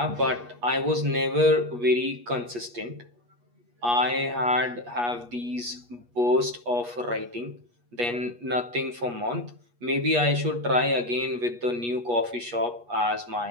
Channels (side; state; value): left; late; 8.4 ms